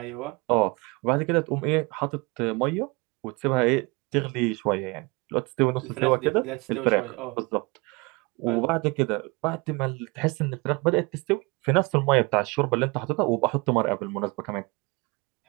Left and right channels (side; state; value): left; quieter; 27.0 dB